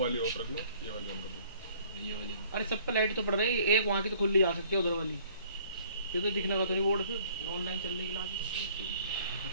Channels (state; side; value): inverted; both; correlation -0.56